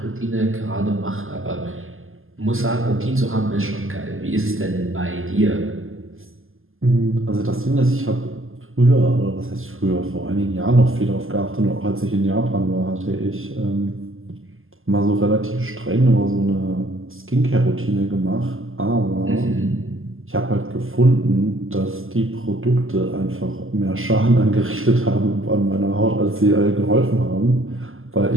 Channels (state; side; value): late; left; 0.59 ms